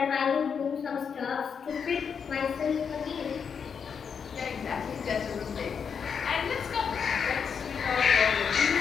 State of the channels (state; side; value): quieter; right; 6.6 dB